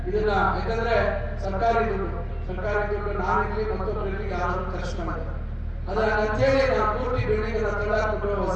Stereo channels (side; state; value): both; identical; correlation 1.00